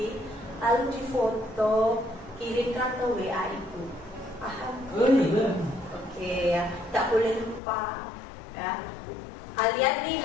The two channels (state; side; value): drops out; right; at 7.6 s